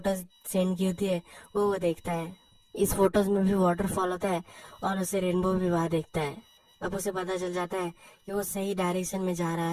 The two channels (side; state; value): both; identical; correlation 1.00